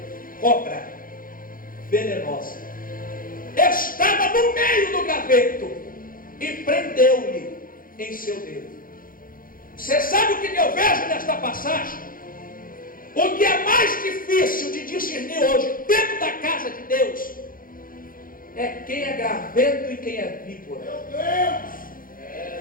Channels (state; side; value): late; right; 0.41 ms